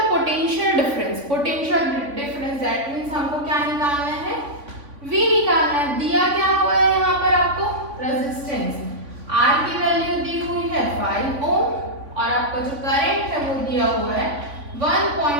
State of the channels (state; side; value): late; left; 3.5 ms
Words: potential difference. Potential difference that means हमको क्या निकालना है, V निकालना है। दिया क्या हुआ है यहाँ पर आपको, रेजिस्टेंस। R की वैल्यू दी हुई है 5 ओम और आपका जो करंट है वो दिया हुआ है